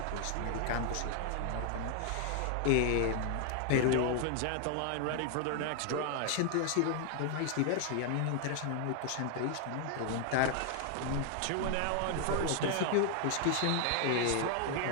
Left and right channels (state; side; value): different; both; correlation 0.00